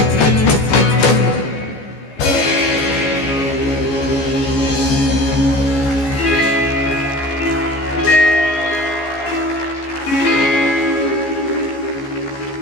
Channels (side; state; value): right; late; 14 ms